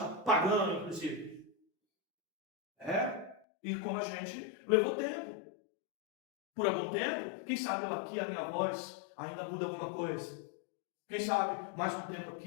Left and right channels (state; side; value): drops out; right; at 3.4 s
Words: pagano, inclusive. E como a gente levou tempo. Por algum tempo, quem sabe eu aqui, a minha voz, ainda muda alguma coisa. Quem sabe, mais um tempo